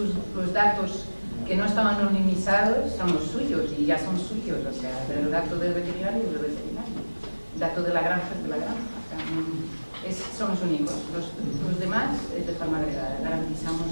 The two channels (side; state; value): both; inverted; correlation -1.00